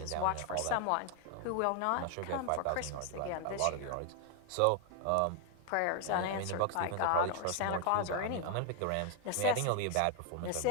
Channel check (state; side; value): different; both; correlation 0.00